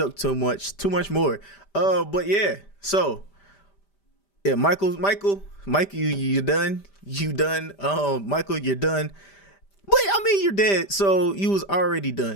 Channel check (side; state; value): right; late; 5.1 ms